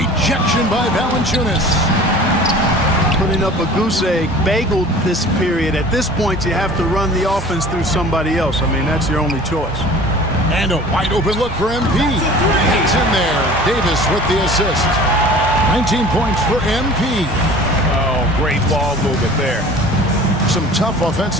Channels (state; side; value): normal; both; correlation 0.44